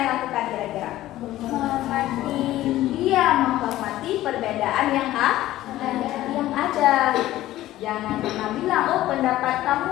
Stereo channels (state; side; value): quieter; right; 15.0 dB